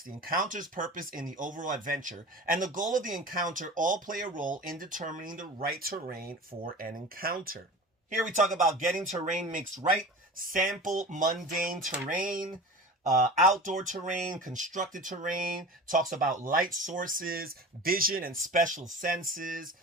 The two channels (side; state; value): both; normal; correlation 0.35